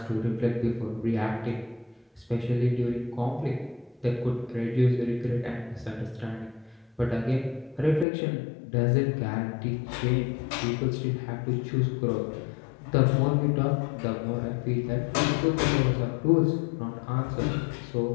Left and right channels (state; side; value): drops out; right; at 8.1 s